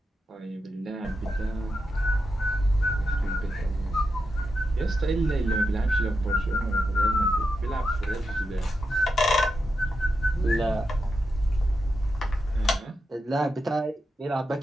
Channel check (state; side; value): normal; both; correlation 0.87